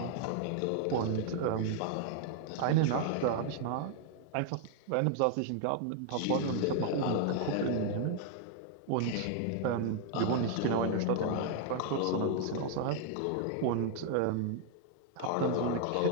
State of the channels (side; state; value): both; different; correlation 0.00